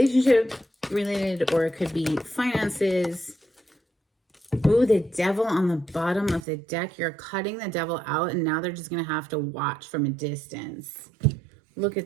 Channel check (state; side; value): drops out; left; at 6.4 s